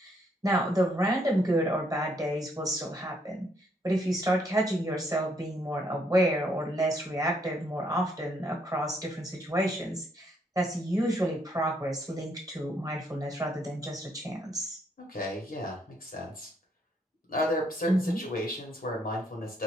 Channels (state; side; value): normal; both; correlation 0.71